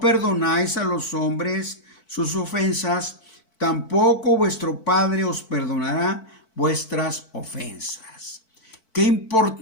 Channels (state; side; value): late; right; 4.5 ms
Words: perdonáis a los hombres sus ofensas, tampoco vuestro Padre os perdonará vuestras ofensas. Qué